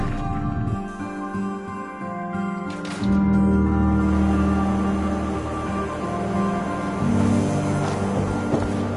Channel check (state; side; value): identical; both; correlation 1.00